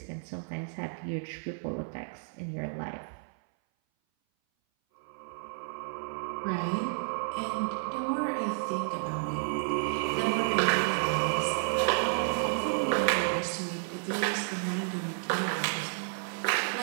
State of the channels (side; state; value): left; silent; 57 dB below the other